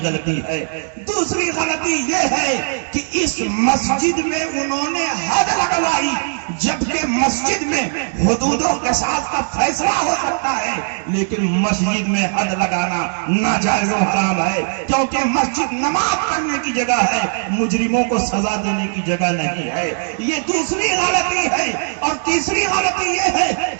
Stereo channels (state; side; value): silent; left; digital silence